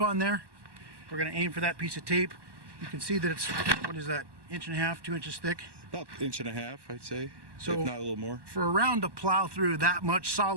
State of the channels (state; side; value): late; left; 1.1 ms